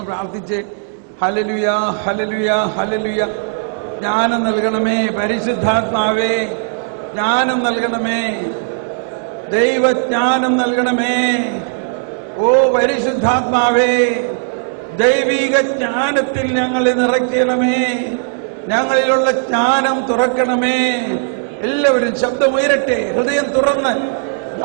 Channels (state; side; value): silent; left; 69 dB below the other